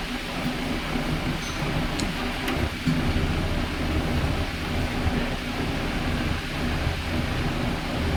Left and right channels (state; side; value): identical; both; correlation 1.00